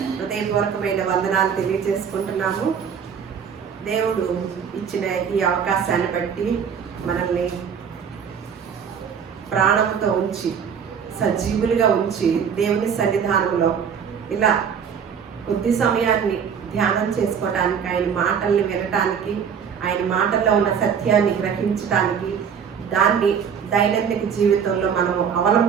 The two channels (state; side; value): quieter; left; 7.2 dB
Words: హృదయపూర్వకమైన వందనాలు తెలియజేసుకుంటున్నాము. దేవుడు ఇచ్చిన ఈ అవకాశాన్ని బట్టి మనల్ని ప్రాణంతో ఉంచి సజీవులుగా ఉంచి దేవుని సన్నిధానంలో ఇలా కొద్ది సమయాన్ని ధ్యానం చేసుకోవటానికి, ఆయన మాటల్ని వినటానికి, ఆయన మాటల్లో ఉన్న సత్యాన్ని గ్రహించటానికి, దాన్ని దైనందిక జీవితంలో మనము